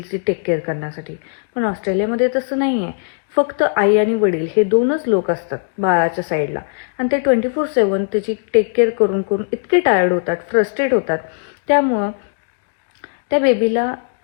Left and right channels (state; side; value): silent; right; digital silence